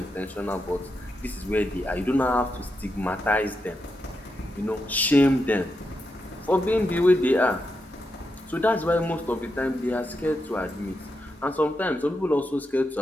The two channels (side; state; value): both; normal; correlation 0.85